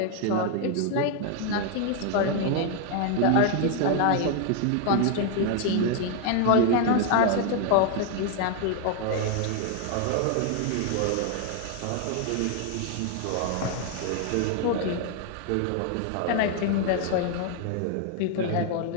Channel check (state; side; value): different; both; correlation 0.00